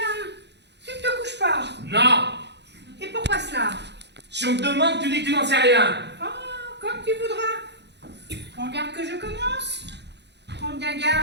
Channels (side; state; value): left; late; 0.50 ms